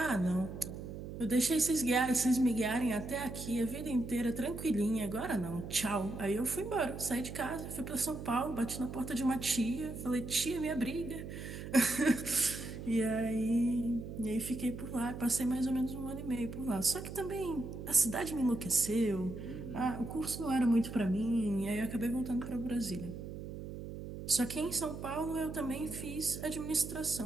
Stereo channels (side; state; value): right; noise; hum, 9 dB below the sound